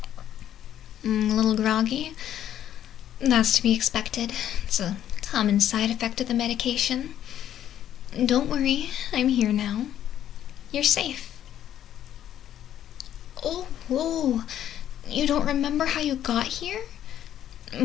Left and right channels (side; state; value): right; quieter; 11.0 dB